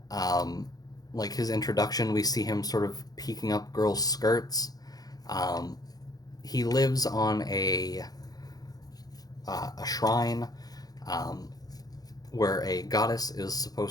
Like his introduction, we see him sort of peeking up girls' skirts. Um, he lives on a shrine um, where a goddess is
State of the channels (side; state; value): right; late; 0.19 ms